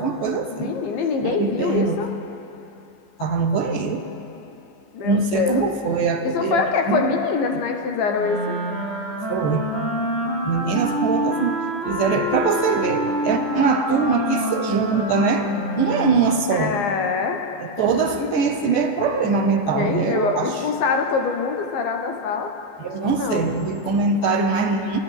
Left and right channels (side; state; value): right; late; 14 ms